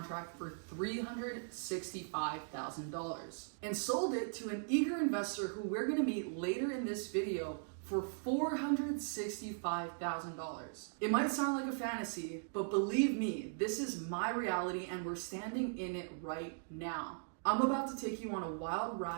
for $365,000 and sold it to an eager investor who we're gonna meet later in this video for $465,000. It might sound like a fantasy, but believe me, this is my reality and we're standing in it right now. I'm about to take you on a wild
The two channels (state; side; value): silent; left; digital silence